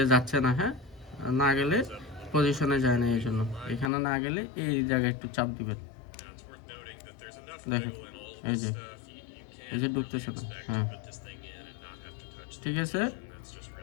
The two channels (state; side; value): drops out; right; at 3.9 s